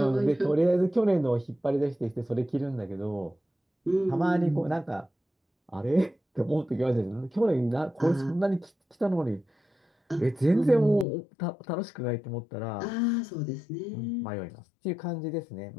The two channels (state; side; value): drops out; right; at 11.1 s